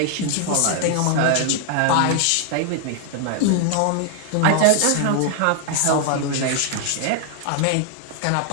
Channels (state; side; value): different; both; correlation 0.00